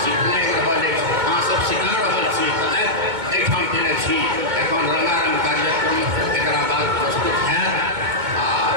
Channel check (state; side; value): late; left; 2.2 ms